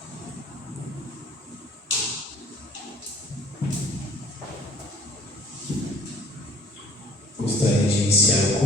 Gostaria de iniciar o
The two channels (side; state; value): both; normal; correlation 0.52